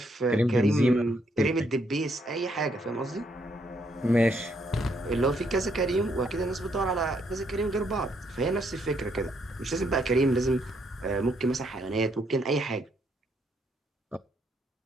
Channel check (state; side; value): normal; both; correlation 0.73